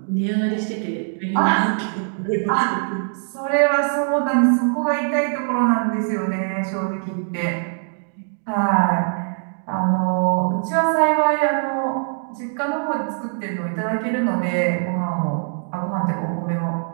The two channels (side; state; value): left; silent; 64 dB below the other